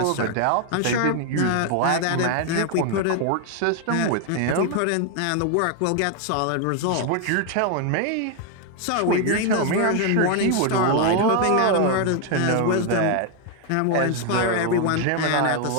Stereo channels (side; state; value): both; different; correlation 0.01